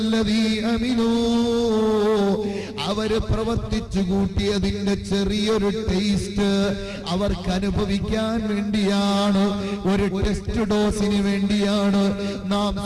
അമിലൂ. അവര് പ്രവർത്തിച്ചു കൂട്ടിയതിന്റെ ചെറിയൊരു ടേസ്റ്റ് അവർക്ക് അനുഭവിക്കാൻ വേണ്ടിയാണ്, ഒരു ടെസ്റ്റ് ഡോസിന് വേണ്ടിയാണ് നാം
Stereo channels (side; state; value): both; identical; correlation 1.00